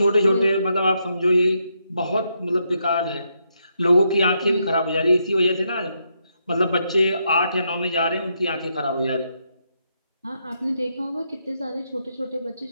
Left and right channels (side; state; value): both; inverted; correlation -0.79